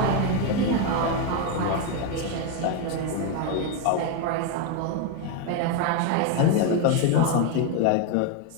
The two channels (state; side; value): different; both; correlation 0.02